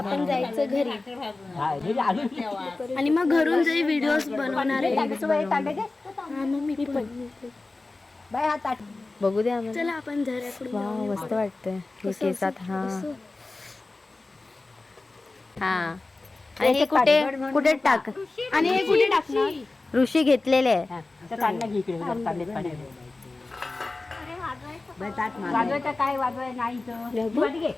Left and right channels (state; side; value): quieter; right; 3.3 dB